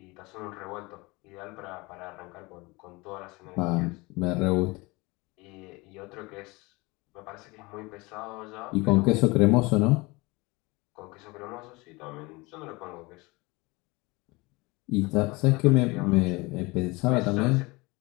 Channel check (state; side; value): quieter; right; 24.4 dB